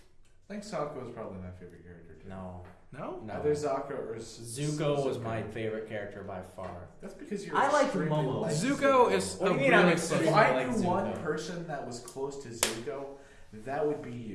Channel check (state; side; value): identical; both; correlation 1.00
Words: I think Sakura was probably my favorite character too. No. No? Either Sakura or Zuko was my favorite character by far. That's because you're. I like extremely Momo. like Zuko is What a do you mean I'm really extremely If special. I like knew one Zuko. person that was close to Zuko, that would be